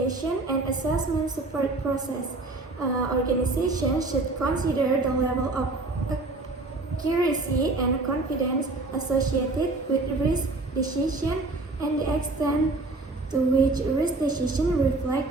and assessment support process. Organizations should consider the level of accuracy and confidence associated with risk decision and the extent to which risk decision reflect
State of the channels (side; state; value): left; quieter; 3.2 dB